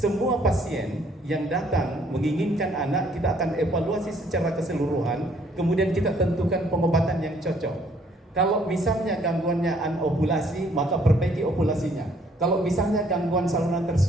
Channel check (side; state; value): both; normal; correlation 0.63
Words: pasien yang datang menginginkan anak, kita akan evaluasi secara keseluruhan, kemudian kita tentukan pengobatan yang cocok. Kalau misalnya gangguannya anovulasi, maka perbaiki ovulasinya. Kalau misalnya gangguan saluran